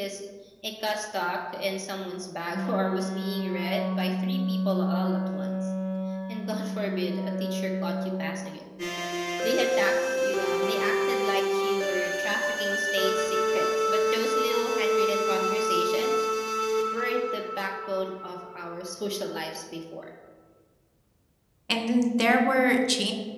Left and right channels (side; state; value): both; identical; correlation 1.00